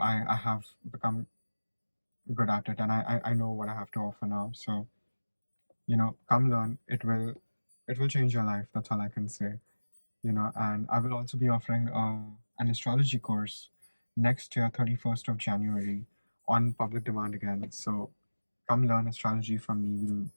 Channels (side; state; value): both; inverted; correlation -1.00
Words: have become good at it, and I know what I have to offer now. So come learn. It will change your life. That's all I can say. And I will also be offering an astrology course next year, 31st of January, on public demand again. So come learn astrology from me.